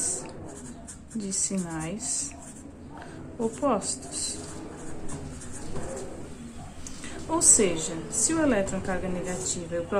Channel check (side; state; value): both; identical; correlation 1.00